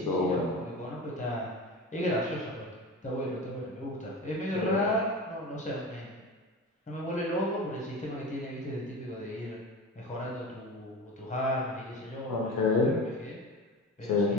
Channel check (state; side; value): normal; both; correlation 0.30